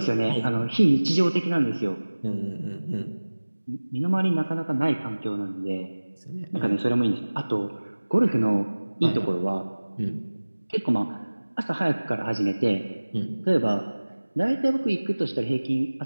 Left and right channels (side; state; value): both; inverted; correlation -1.00